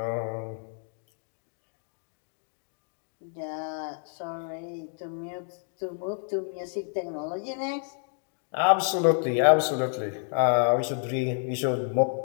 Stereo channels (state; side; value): silent; right; 58 dB below the other